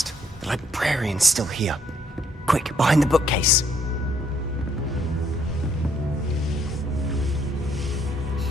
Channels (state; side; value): normal; both; correlation 0.69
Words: The librarian's still here. Quick, behind the bookcase.